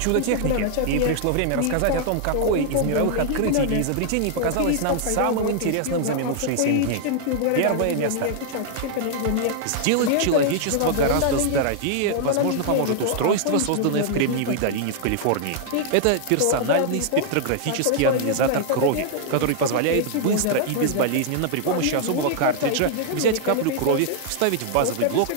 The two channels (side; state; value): both; different; correlation 0.00